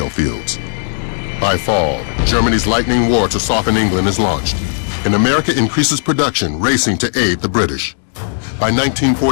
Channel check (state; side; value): silent; right; digital silence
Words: fields. By fall, Germany's lightning war to soften England is launched, and America increases production, racing to aid the British. By